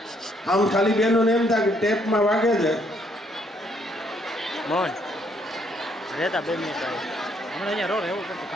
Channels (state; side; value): normal; both; correlation 0.69